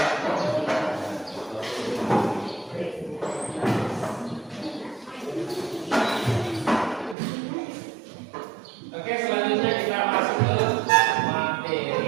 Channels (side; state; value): left; drops out; at 7.2 s